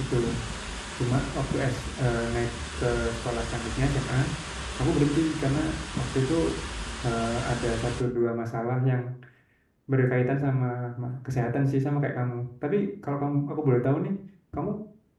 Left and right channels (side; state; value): both; identical; correlation 1.00